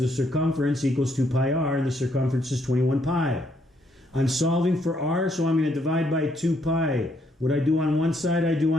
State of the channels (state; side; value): normal; both; correlation 0.72